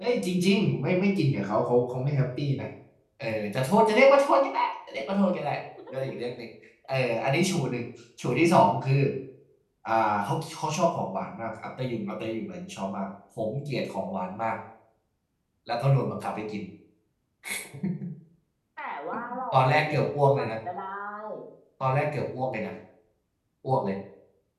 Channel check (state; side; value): identical; both; correlation 1.00